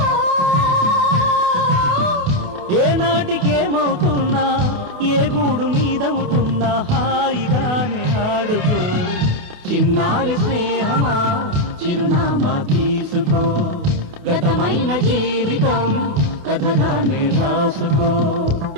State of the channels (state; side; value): late; left; 28 ms